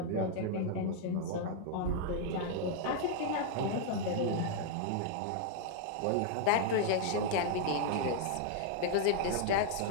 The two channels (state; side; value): different; both; correlation 0.00